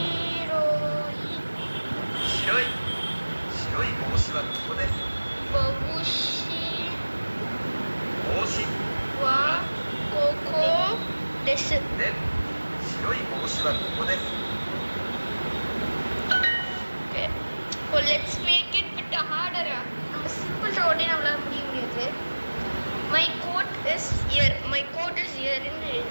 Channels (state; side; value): inverted; both; correlation -1.00